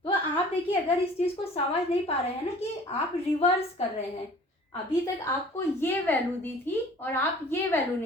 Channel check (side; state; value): both; normal; correlation 0.48